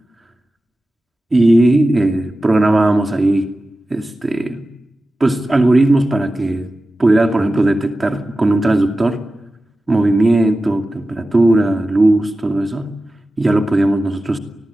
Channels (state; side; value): normal; both; correlation 0.94